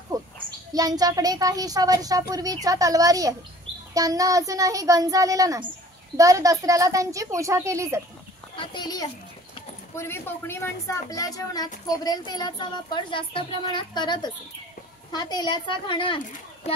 खोत यांच्याकडे काहीशा वर्षापूर्वीच्या तलवारी आहेत. त्यांना अजूनही गंज आलेला नाही. दर दसऱ्याला त्यांची पूजा केली जाते. हा तेली आहे. पूर्वी कोकणी माणसं आपल्या जेवणात खोबरेल तेलाचा वापर जास्त प्रमाणात करत असे. हा तेलाचा घाणा आहे.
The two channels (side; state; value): both; normal; correlation 0.50